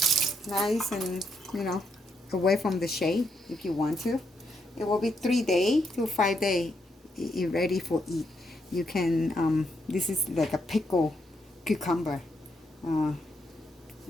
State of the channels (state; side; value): normal; both; correlation 0.78